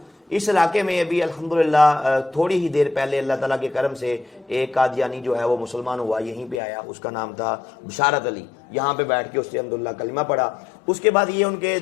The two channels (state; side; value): drops out; right; at 6.6 s